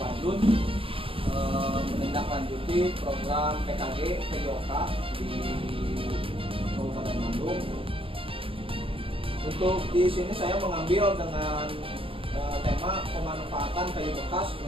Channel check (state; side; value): late; left; 0.26 ms